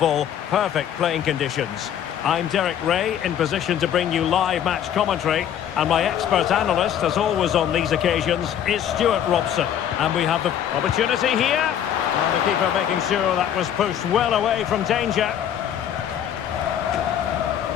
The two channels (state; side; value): quieter; right; 9.8 dB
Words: Perfect playing conditions. I'm Derek Ray, in position to bring you live match commentary. And my expert analyst, as always on these occasions, is Stuart Robson. And we have the opportunity here. And the keeper making sure that was pushed well away from danger.